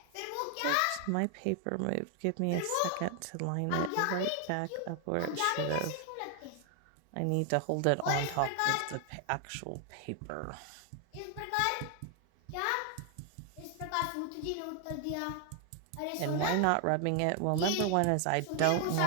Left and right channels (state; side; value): different; both; correlation 0.00